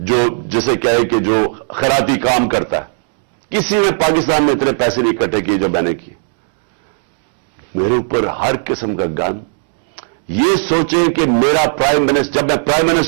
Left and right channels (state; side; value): silent; left; 70 dB below the other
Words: جسے کہے کہ جو خیراتی کام کرتا ہے. کسی نے پاکستان میں اتنے پیسے نہیں اکٹھے کیے جو میں نے کیے. میرے اوپر ہر قسم کا گن. یہ سوچیں کہ میرا پرائم منسٹر، جب میں پرائم